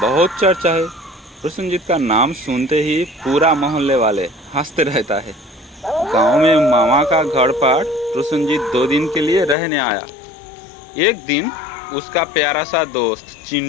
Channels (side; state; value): right; drops out; at 9.6 s